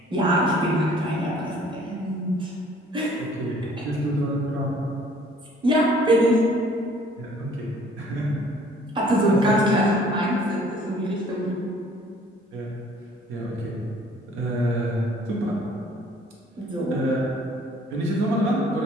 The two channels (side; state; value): both; normal; correlation 0.56